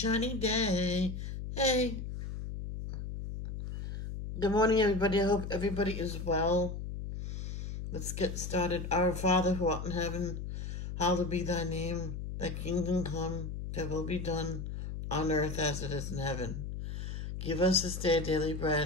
day. Hey, good morning, everybody. I hope everybody is well. Let's get started. Our Father who art in heaven, hallowed be thy name. Thy kingdom come, thy will be done on earth as it is in heaven. Give us this day daily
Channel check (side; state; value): left; noise; hum, 6 dB below the sound